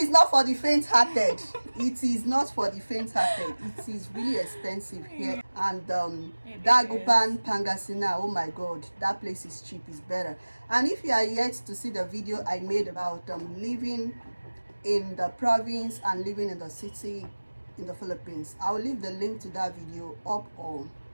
not for the faint-hearted. It is not for the faint-hearted. It is really expensive here. And Dagupan, Pangasinan, oh my god, that place is cheap, is better. And if you are yet to see the video I made about living in the province and living in the city in the Philippines, I'll leave the link to that video up or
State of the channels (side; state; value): both; inverted; correlation -1.00